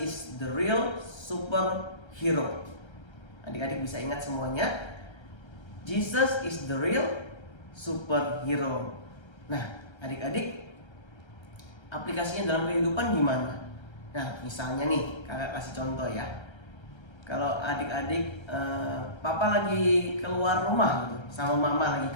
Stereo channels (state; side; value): late; right; 1.3 ms